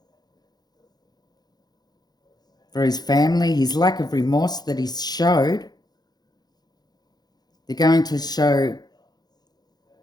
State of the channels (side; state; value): right; late; 0.19 ms